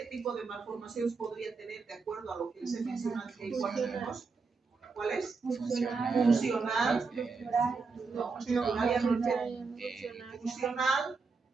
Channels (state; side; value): quieter; left; 4.6 dB